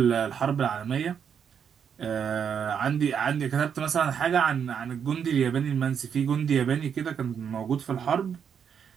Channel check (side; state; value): left; quieter; 7.6 dB